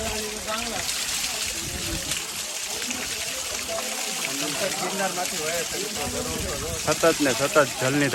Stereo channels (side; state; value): both; identical; correlation 1.00